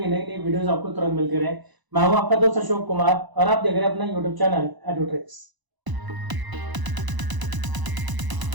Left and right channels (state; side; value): late; left; 1.0 ms